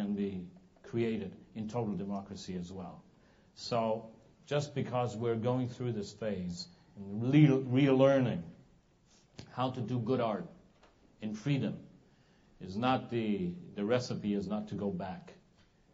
be created in total democracy as well. So just because we're going through this phase and relearning how to do good art in freedom is not the recipe is not to go back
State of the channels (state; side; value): identical; both; correlation 1.00